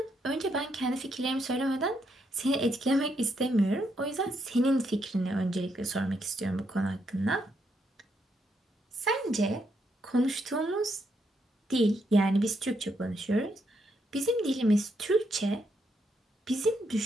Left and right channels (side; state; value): both; normal; correlation 0.77